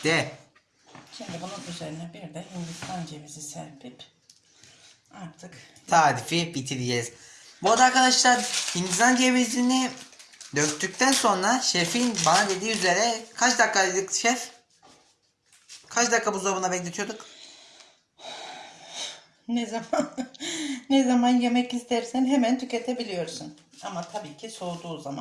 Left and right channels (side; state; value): both; identical; correlation 1.00